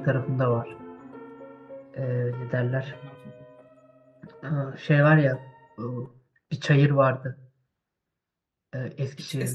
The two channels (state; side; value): identical; both; correlation 1.00